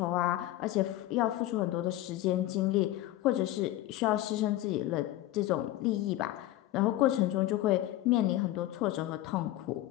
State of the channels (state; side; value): quieter; right; 15.2 dB